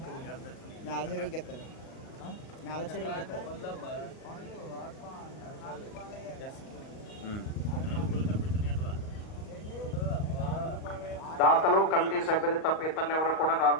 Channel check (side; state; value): right; late; 38 ms